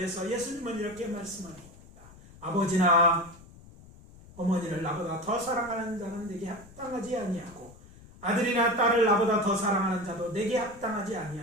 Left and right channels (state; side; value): noise; left; rumble, 21 dB below the sound